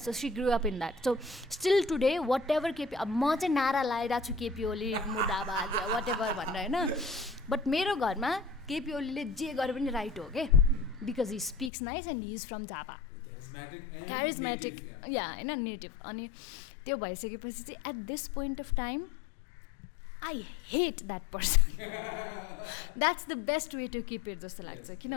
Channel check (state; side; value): drops out; right; at 11.7 s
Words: she grew up in that. So still today whatever म चाहिँ नारा लगाइरहेको छु KP Oli मुर्दाबाद वाट एभर भनेर हैन. बट मेरो घरमा KP Oliले जे गरे पनि राइट हो के, because he speaks nice and he is from Jhapa. Charismatic yeah हैन, नेटिभ. अनि त्यो भइसकेपछि चाहिँ at this point of time I hate that person. That's the best way to keep it जस्तो लाग्छ.